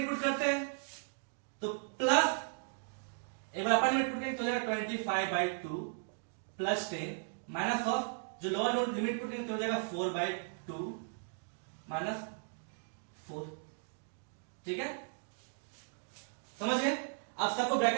पुट करते हैं, तो प्लस एक बार अपर लिमिट पुट करेंगे तो हो जाएगा 25 बाय 2 प्लस 10 माइनस ऑफ जो लोअर लिमिट पुट करेंगे तो हो जाएगा 4 बाय 2 माइनस 4, ठीक है, समझ गए। अब सबको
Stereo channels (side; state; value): left; silent; digital silence